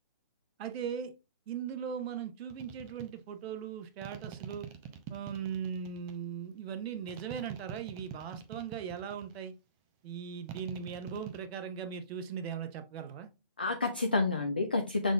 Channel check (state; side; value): inverted; both; correlation -0.47